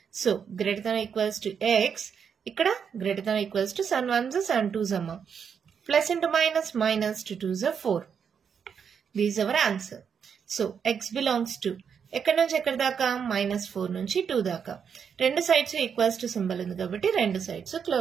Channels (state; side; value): quieter; left; 7.0 dB